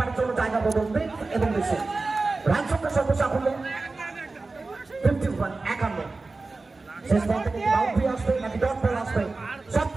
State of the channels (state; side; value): quieter; left; 3.6 dB